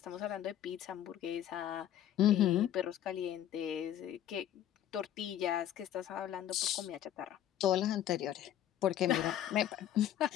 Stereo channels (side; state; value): right; quieter; 11.2 dB